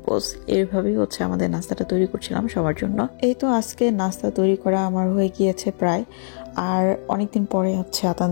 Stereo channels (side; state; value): right; silent; digital silence